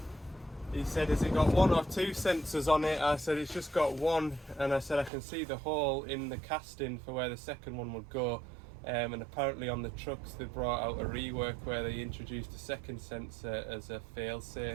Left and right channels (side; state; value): left; drops out; at 5.1 s